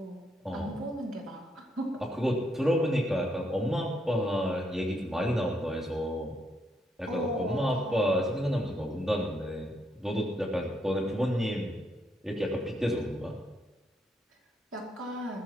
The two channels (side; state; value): both; normal; correlation 0.75